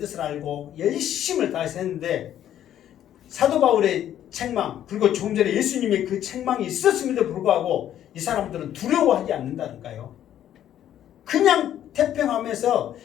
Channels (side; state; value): right; quieter; 11.1 dB